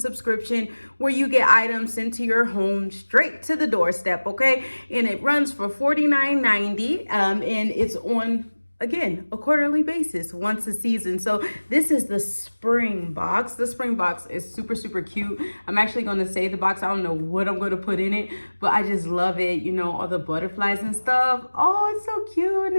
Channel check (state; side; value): inverted; both; correlation -1.00